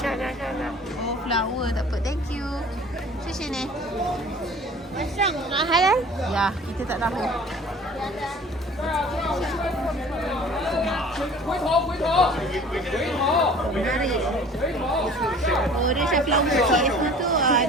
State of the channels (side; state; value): both; normal; correlation 0.47